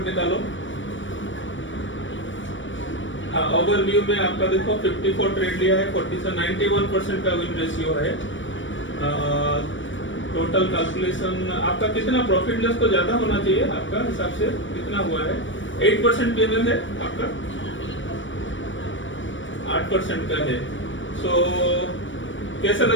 निकालो। ओवरव्यू में आपका देखो 54 ट्रेड लिया है, 91% का विन रेशियो है। टोटल कैलकुलेशन आपका कितना प्रॉफिट लॉस तो ज्यादा होना चाहिए आपका हिसाब से, कितना हुआ है? 8% पेमेंट है आपका, 8% का है। सो कैसा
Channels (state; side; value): late; right; 0.56 ms